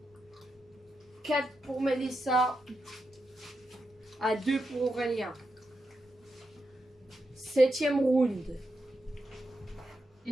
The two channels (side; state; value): both; normal; correlation 0.86